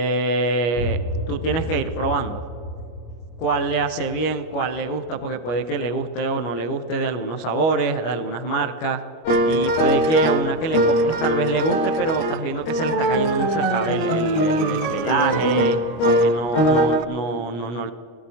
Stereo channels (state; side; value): late; right; 25 ms